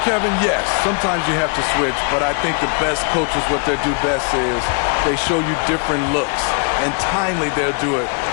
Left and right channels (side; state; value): right; quieter; 39.1 dB